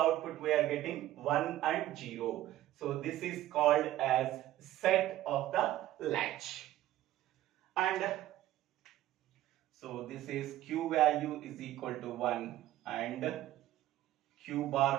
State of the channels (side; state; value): left; quieter; 14.2 dB